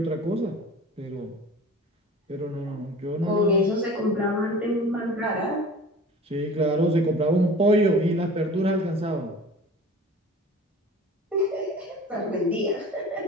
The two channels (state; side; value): normal; both; correlation 0.41